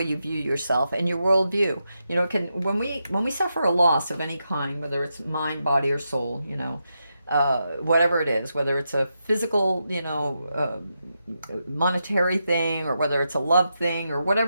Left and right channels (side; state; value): both; inverted; correlation -0.86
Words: you view yourself and your worldview. Can when we suffer a loss of any kind, whether it's mind, body, or soul, whatever it is, whether it's a physical, monetary thing, or whether it's a love thing, or